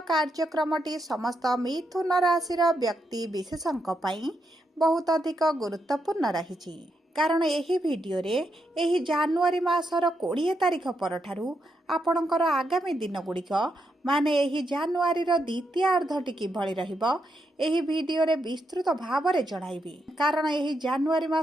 कार्यक्रमटी समस्त मिथुन राशि व्यक्ति विशेषों बहुत अधिक गुरुत्वपूर्ण रही कारण यही वीडियो रे यही जनवरी मासर 20 तारिख परठारु आपणकर आगामी दिन गुड़िक माने यही जनवरी द्वितीय अर्धटी किभଳି रहिबो यही वीडियो रे विस्तृत भाव में जणाइबी। कारण यही जनवरी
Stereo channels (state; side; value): normal; both; correlation 0.82